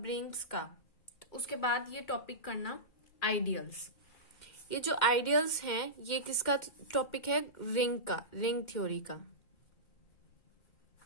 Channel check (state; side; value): late; right; 2.1 ms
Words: रिंग्स का। उसके बाद ये टॉपिक करना आइडियल्स। ये जो आइडियल्स हैं ये किसका टॉपिक है? रिंग का, रिंग थ्योरी का।